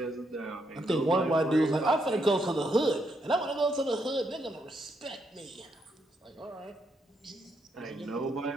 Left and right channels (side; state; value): both; normal; correlation 0.78